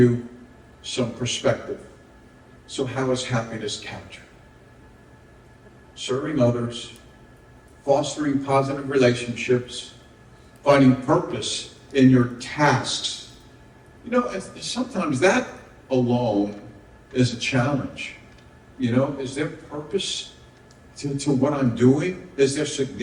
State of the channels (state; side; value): identical; both; correlation 1.00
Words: some perspective. So how is happiness captured? Serving others, fostering positive relationships, finding purpose in your tasks. Sometimes that alone is a challenge. Is there purpose to what I'm doing? Is there